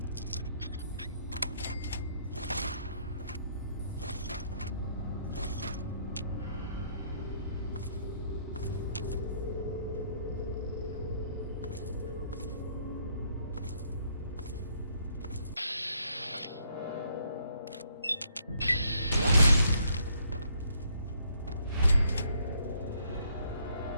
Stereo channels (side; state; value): both; inverted; correlation -0.69